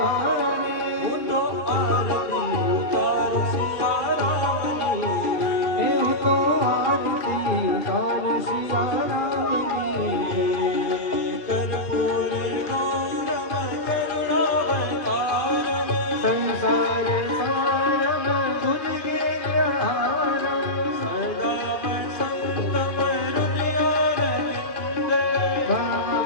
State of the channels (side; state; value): right; late; 2.2 ms